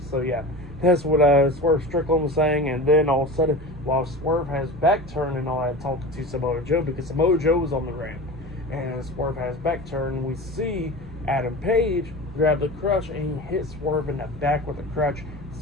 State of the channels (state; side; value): normal; both; correlation 0.31